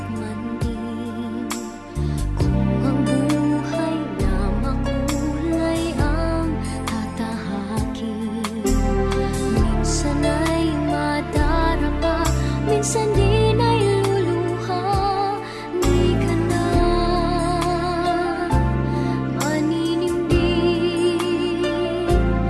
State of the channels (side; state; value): both; identical; correlation 1.00